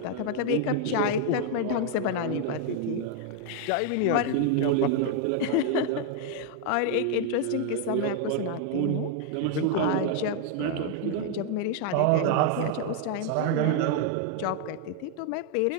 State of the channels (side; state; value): both; different; correlation 0.00